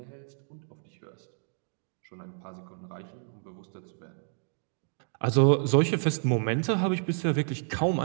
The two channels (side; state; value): left; silent; 58 dB below the other